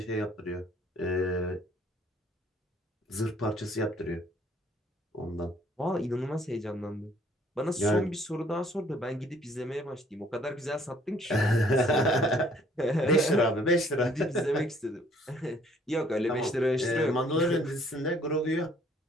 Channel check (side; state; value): both; normal; correlation 0.60